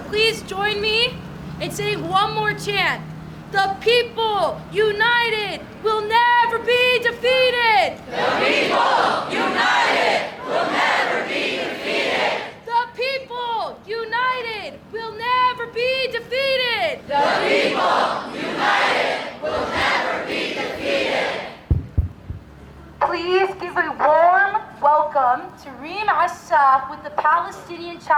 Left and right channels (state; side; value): identical; both; correlation 1.00